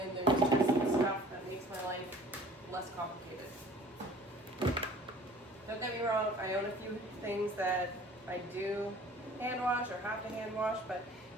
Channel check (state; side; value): normal; both; correlation 0.49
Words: there's just stuff that makes my life less complicated. Don't get me wrong, I own a few things that I do hand wash or have to hand wash, but